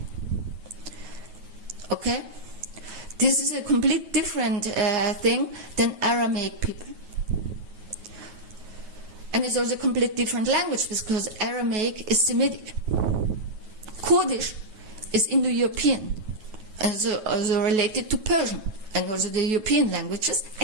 Okay? This is a complete different thing than Aramaic people. And it's also a complete different language because Aramaic is Semitic. Kurdish is Indo-European, and also related to Persian, and also the European languages,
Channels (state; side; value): late; left; 9.3 ms